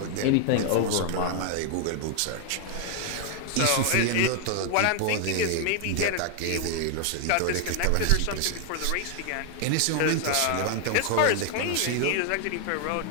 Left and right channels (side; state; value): both; different; correlation 0.00